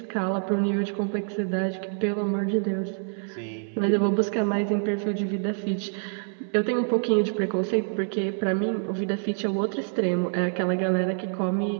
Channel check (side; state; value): left; silent; 61 dB below the other